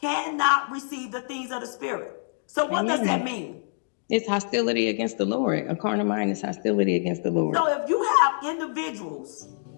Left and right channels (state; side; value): silent; right; digital silence